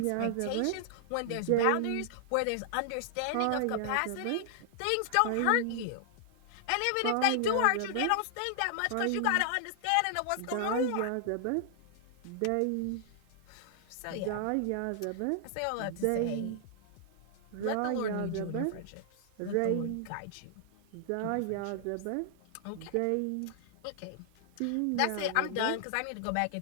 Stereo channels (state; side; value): different; both; correlation -0.01